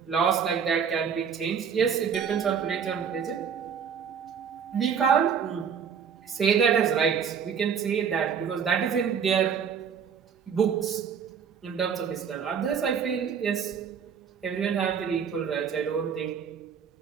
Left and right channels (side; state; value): left; quieter; 7.2 dB